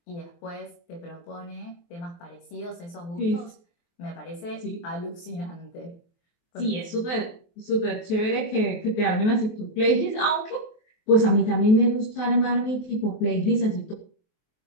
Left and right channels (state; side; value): late; right; 23 ms